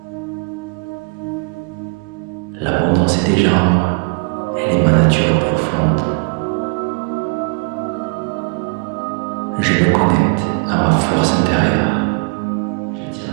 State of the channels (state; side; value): quieter; left; 34.1 dB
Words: L'abondance est déjà en moi. Elle est ma nature profonde. Je me connecte à ma force intérieure. J'attire